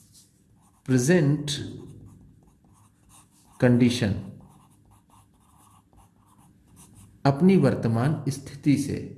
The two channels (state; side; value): identical; both; correlation 1.00